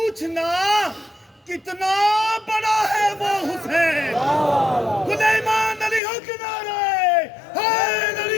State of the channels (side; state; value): right; drops out; at 6.0 s